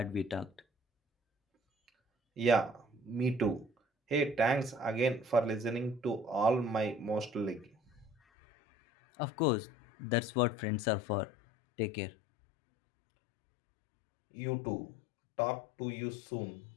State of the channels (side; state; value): right; drops out; at 8.2 s